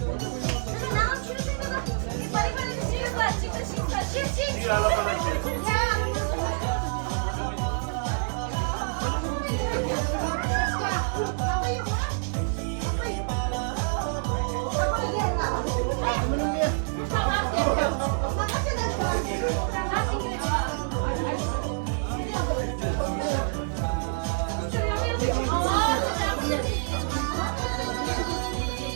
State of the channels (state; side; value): silent; left; 60 dB below the other